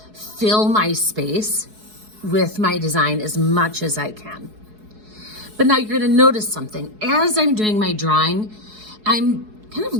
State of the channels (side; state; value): left; late; 4.7 ms